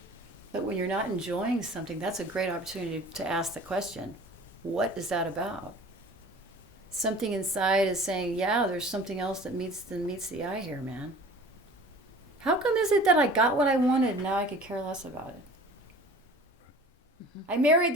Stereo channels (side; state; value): both; normal; correlation 0.43